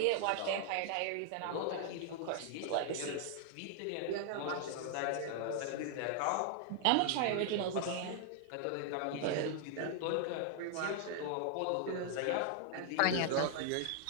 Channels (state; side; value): different; both; correlation 0.00